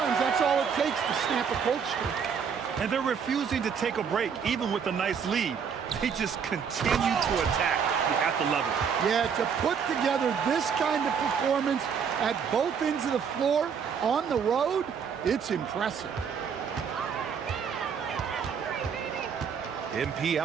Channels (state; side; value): quieter; left; 6.8 dB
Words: that's all it takes to snap a cold streak. And they're refusing to take a break, even with a nice lead. They just continue to attack. You have to love it. Yeah, to put together this kind of performance at both ends of the floor on the road, it's impressive. MP